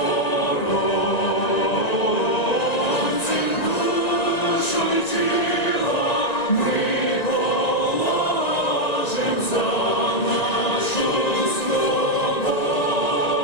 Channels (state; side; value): late; right; 1.9 ms